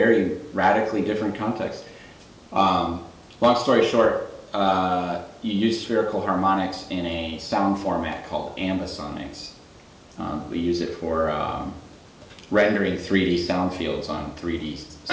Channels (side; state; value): both; identical; correlation 1.00